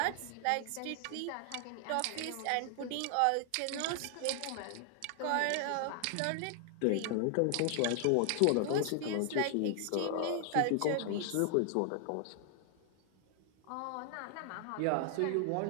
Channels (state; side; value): different; both; correlation 0.00